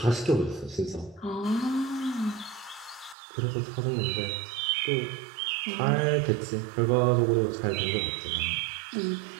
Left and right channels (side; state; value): left; drops out; at 3.2 s